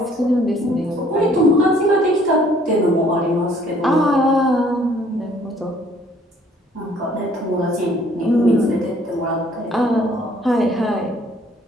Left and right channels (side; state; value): both; normal; correlation 0.60